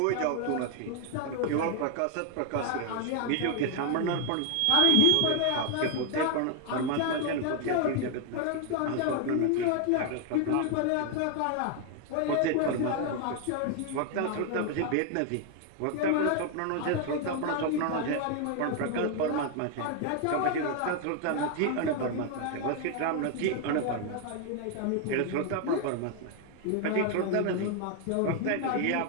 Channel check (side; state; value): both; different; correlation 0.00